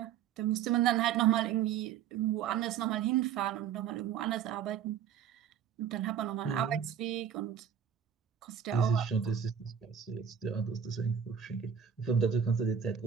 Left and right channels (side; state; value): left; quieter; 8.3 dB